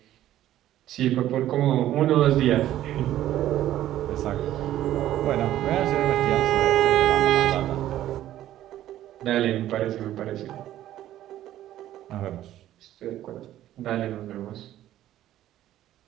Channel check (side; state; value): left; quieter; 13.1 dB